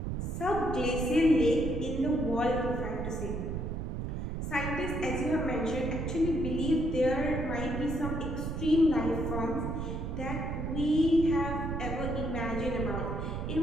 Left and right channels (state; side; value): noise; right; rumble, 3 dB below the sound